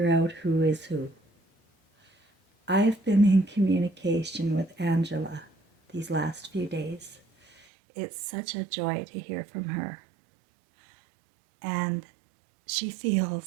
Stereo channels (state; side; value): drops out; left; at 7.7 s